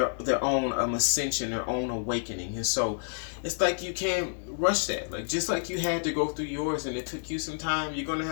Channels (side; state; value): right; silent; digital silence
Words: own ascension, their own awakening. And so it's like you can't rush that. Like, just like you had to go through yours and it took you some time, you're going to